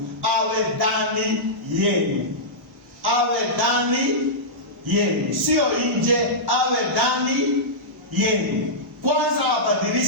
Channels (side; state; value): both; normal; correlation -0.13